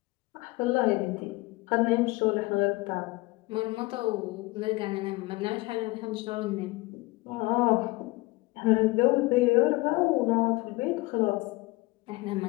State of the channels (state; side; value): quieter; right; 22.3 dB